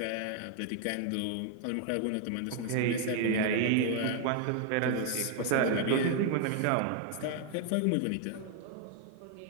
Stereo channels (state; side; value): different; both; correlation 0.00